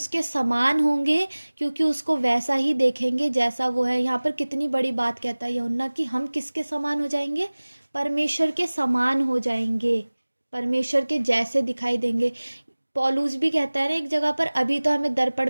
समान होंगे, क्योंकि उसको वैसा ही देखेंगे जैसा वो है। यहाँ पर कितनी बड़ी बात कहता है यूहन्ना कि हम किसके समान हो जाएंगे, परमेश्वर के समान हो जाएंगे, परमेश्वर के जैसे दिखाई देंगे। पौलुस भी कहता है ना एक जगह पर, अभी तो हमें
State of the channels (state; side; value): inverted; both; correlation -1.00